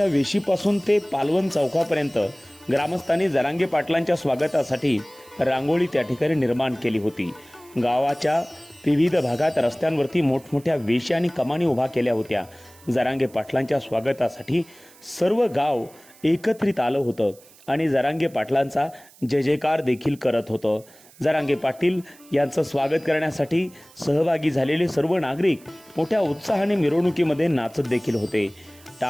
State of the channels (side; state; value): right; noise; hiss, 25 dB below the sound